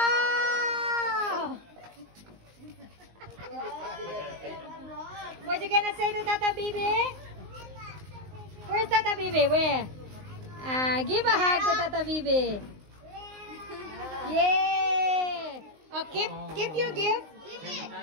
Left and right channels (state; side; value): late; left; 19 ms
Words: What you gonna say to Tata Bibi? Where's Tata Bibi? Where? Give a hug to Tata Bibi. Yay! Oh, keep your gift. Give